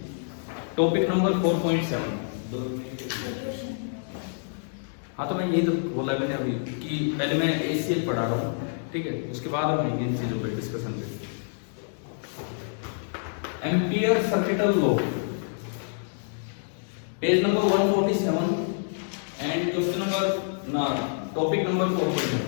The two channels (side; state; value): right; silent; digital silence